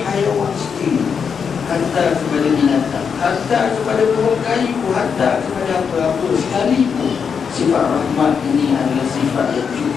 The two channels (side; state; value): right; quieter; 6.5 dB